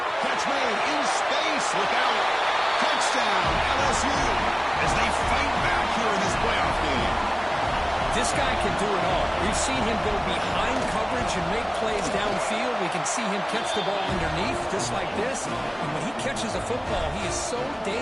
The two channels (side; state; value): both; identical; correlation 1.00